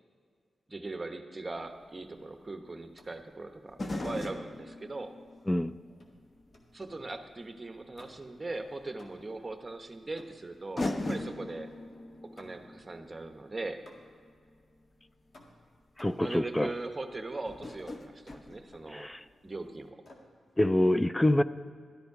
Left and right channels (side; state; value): both; normal; correlation 0.97